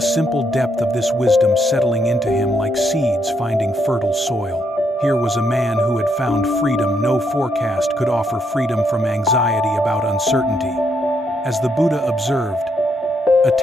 simple depth of this wisdom settling into him like seeds finding fertile soil. Here was a man who had found freedom no forecast could offer, freedom from anxiety about uncertainty. As the Buddha observed,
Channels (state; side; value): normal; both; correlation 0.75